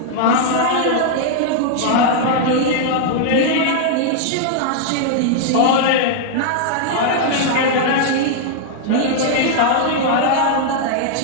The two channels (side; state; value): both; different; correlation -0.01